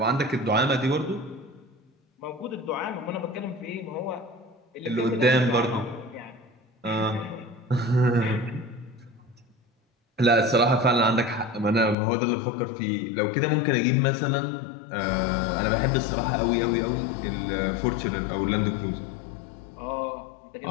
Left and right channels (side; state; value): right; drops out; at 12.0 s